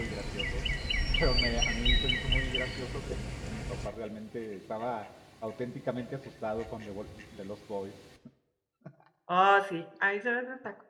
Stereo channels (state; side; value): identical; both; correlation 1.00